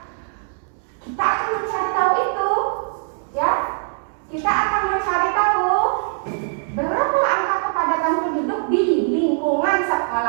Kita akan mencari tahu itu. Ya, kita akan mencari tahu berapa angka kepadatan penduduk di lingkungan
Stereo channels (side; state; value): left; silent; digital silence